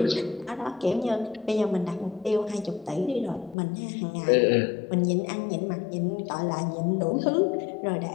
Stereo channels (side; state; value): right; drops out; at 3.6 s